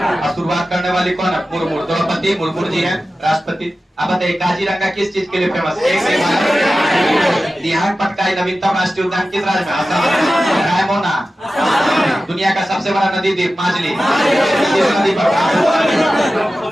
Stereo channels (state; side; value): normal; both; correlation 0.94